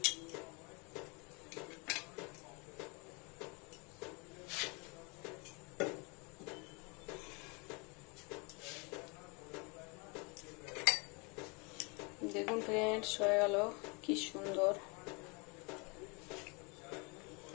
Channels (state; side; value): quieter; right; 30.8 dB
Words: দেখুন ফ্রেন্ডস, হয়ে গেল। কি সুন্দর